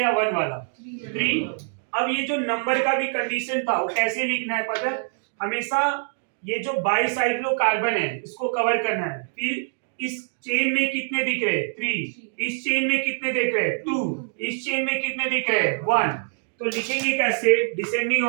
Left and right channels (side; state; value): left; silent; digital silence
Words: 1 वाला, 3। अब ये जो नंबर का भी कंडीशन था वो कैसे लिखना है पता है, हमेशा ये जो बाईसाइक्लो कार्बन है इसको कवर करना है, फिर इस चेन में कितने दिख रहे हैं 3, इस चेन में कितने दिख रहे हैं 2, इस चेन में कितने दिख रहे हैं 1। तो लिखेंगे कैसे डिसेंडिंग